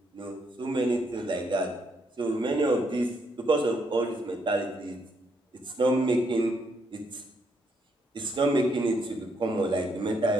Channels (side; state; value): both; normal; correlation 0.75